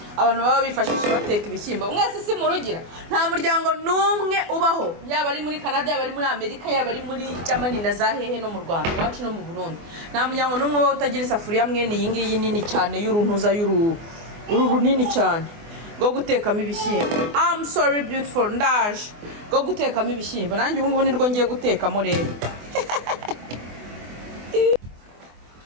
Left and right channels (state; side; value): late; left; 24 ms